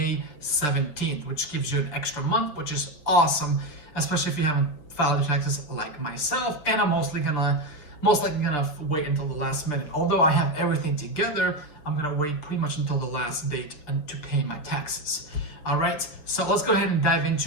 17th, which gives you an extra month, which is awesome, especially if you haven't filed your taxes like myself. And I'm most likely gonna wait until the last minute. Although I have everything together, I'm gonna wait pretty much until the last date to pay my taxes. All right, so let's go ahead and dive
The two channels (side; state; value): right; late; 6.6 ms